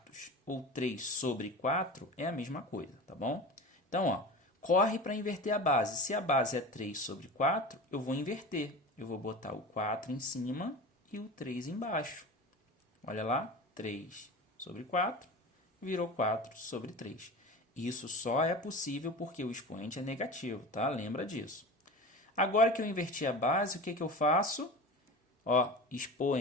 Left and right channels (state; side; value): normal; both; correlation 0.32